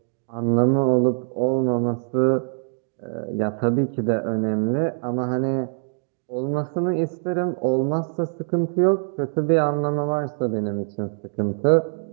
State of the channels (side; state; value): left; silent; digital silence